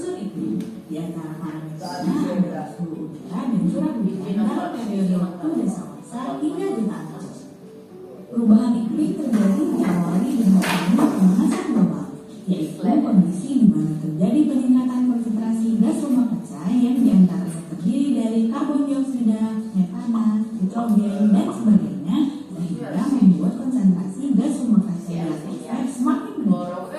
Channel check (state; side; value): identical; both; correlation 1.00